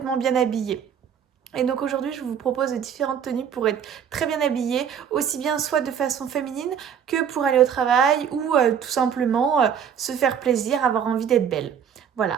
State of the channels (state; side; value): quieter; left; 8.0 dB